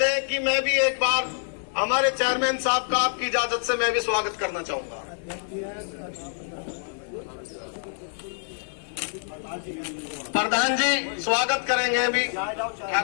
कि मैं भी एक बार हमारे चेयरमैन साहब का आपकी इजाजत से मैं भी स्वागत करना चाहूंगा। प्रधान जी स्वागत करेंगे अभी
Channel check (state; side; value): silent; right; digital silence